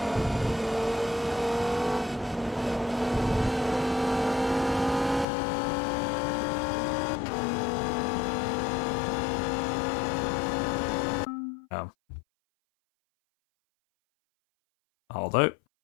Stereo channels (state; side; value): drops out; right; at 5.2 s